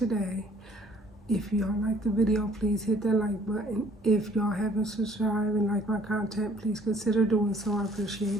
If y'all like the video, please hit that like button. If y'all haven't subscribed and like my content, please consider doing so. I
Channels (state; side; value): normal; both; correlation 0.58